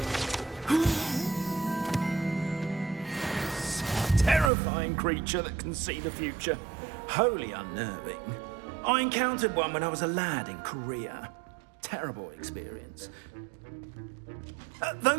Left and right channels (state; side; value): drops out; left; at 4.5 s